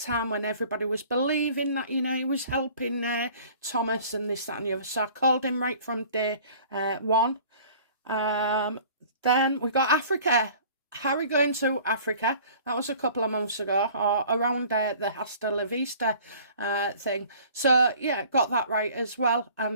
time when everybody was believing that, he was helping Thomas and this, that and the other. So I called him right from day one. Then we got Africa. Harry going to Africa. That was a couple of months ago, or around the Hasta La Vista thing. So, yeah, got that right as well.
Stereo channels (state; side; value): inverted; both; correlation -0.49